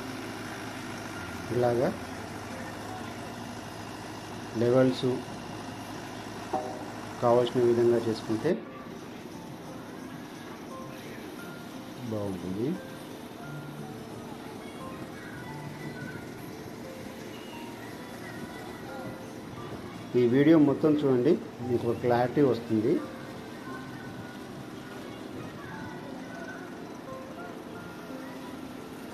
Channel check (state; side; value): identical; both; correlation 1.00